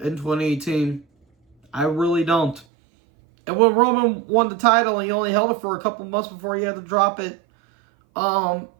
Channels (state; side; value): drops out; left; at 2.7 s